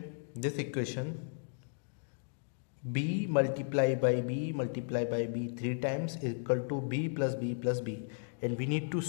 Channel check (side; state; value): right; silent; digital silence